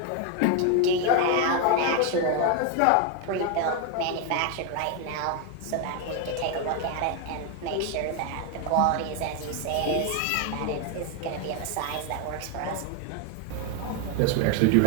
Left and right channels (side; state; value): both; different; correlation 0.01